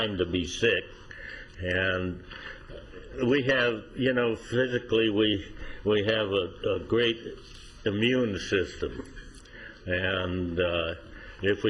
to be sick. And we have, physically we have a great immune system, and if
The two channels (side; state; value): both; identical; correlation 1.00